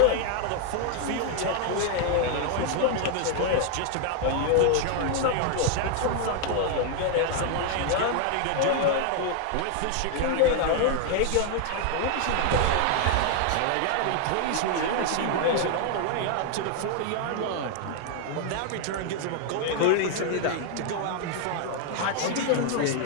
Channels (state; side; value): different; both; correlation 0.00